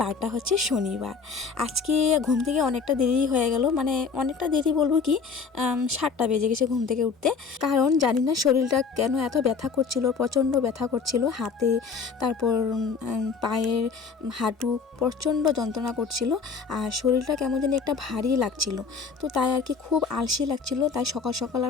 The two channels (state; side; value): quieter; right; 5.3 dB